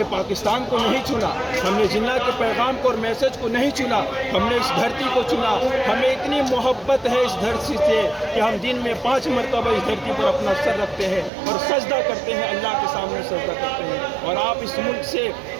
पाकिस्तान को नहीं चुना, हमने जिन्ना के पैगाम को और मैसेज को नहीं चुना, हमने इस धरती को चुना। हमें इतनी मोहब्बत है इस धरती से कि हम दिन में 5 मरतबा इस धरती पर अपना सर रखते हैं और सजदा करते हैं, अल्लाह के सामने सजदा करते हैं। और आप इस मुल्क से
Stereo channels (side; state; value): left; drops out; at 11.3 s